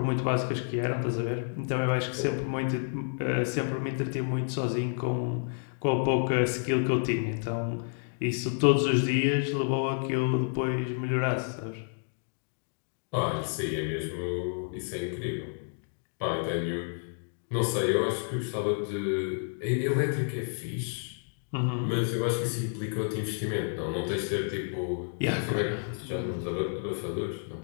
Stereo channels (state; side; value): silent; right; digital silence